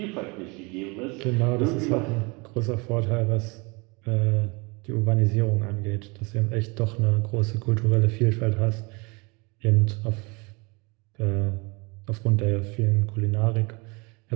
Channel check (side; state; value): left; quieter; 28.5 dB